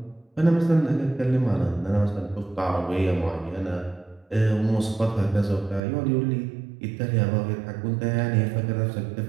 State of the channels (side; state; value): left; drops out; at 5.8 s